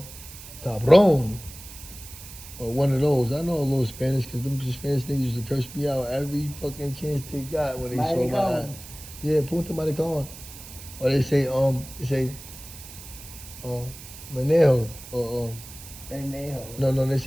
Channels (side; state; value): right; noise; hiss, 15 dB below the sound